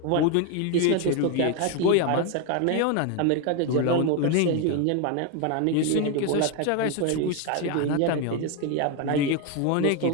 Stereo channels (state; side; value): different; both; correlation 0.01